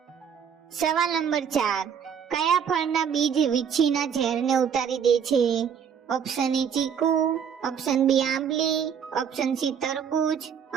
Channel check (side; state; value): left; quieter; 7.6 dB